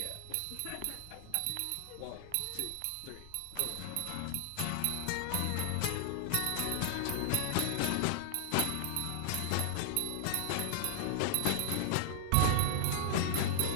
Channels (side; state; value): both; different; correlation -0.01